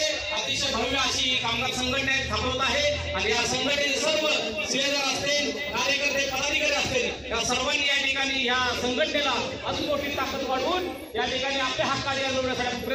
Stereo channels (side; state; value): both; identical; correlation 1.00